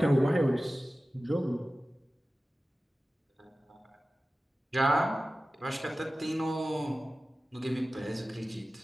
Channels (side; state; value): both; normal; correlation 0.96